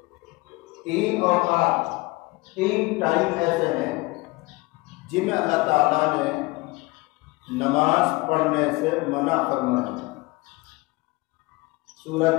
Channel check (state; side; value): quieter; right; 23.5 dB